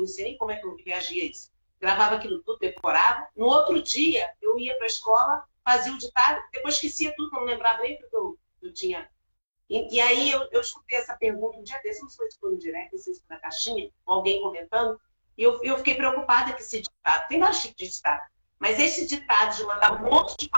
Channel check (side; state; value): both; inverted; correlation -1.00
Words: sei nem como é que eu reagia a isso. Gravava aquilo tudo, decorava. No outro dia, eu ia para a escola, fazia o ditado, depois esquecia tudo, não lembrava nem porque eu tinha. E aí eu escutei essa pergunta um dia desse, não sei se foi no direct, não sei se foi na caixinha, ou alguém comentando, e eu fiquei preocupada que esse ditado, tem vários tipos de ditado, mas esse ditado de mandar um monte de